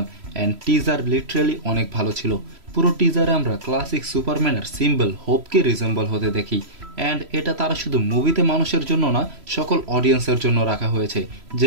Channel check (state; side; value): late; left; 3.0 ms